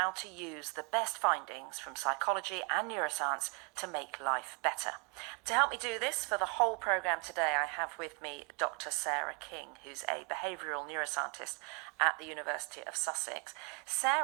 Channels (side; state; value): left; quieter; 34.3 dB